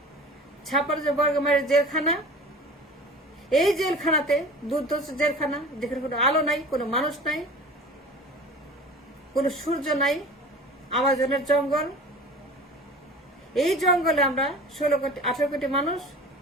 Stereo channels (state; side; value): normal; both; correlation 0.39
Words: 56,000 বর্গ মাইলের জেলখানা। এই জেলখানাতে দুর্ধর্ষ জেলখানা, যেখানে কোনো আলো নাই, কোনো মানুষ নাই, কোনো সূর্য নাই, আমাজনের জঙ্গল। এই জঙ্গলে আমরা 18 কোটি মানুষ,